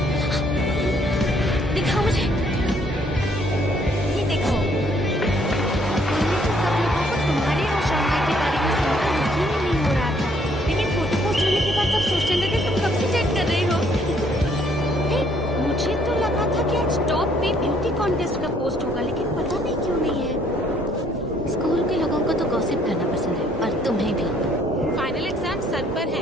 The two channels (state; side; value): normal; both; correlation 0.65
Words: दिखाओ मुझे। ये देखो, पहले तो सब लोगों को तुम्हारे और शाओनाई के बारे में सुनकर यकीन ही नहीं हो रहा था, लेकिन फोटो पोस्ट होने के बाद सब सोचने लगे तुम कब से चेक कर रही हो। मुझे तो लगा था कि आज टॉप पे ब्यूटी कॉन्टेस्ट का पोस्ट होगा, लेकिन पता नहीं क्यों नहीं है। स्कूल के लोगों को तो गॉसिप करना पसंद है, और तुम्हें भी। फाइनल एग्जाम सर पर है,